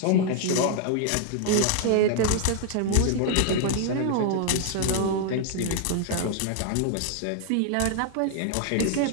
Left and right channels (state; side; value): different; both; correlation 0.00